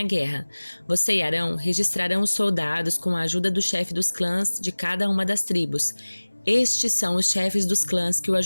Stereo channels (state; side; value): inverted; both; correlation -1.00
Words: guerra. Você e Arão registrarão os soldados com a ajuda do chefe dos clãs de cada uma das tribos. Estes são os chefes dos clãs que o